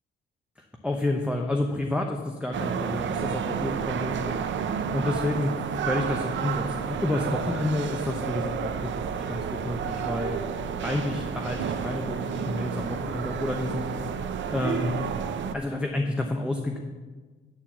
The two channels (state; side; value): normal; both; correlation 0.56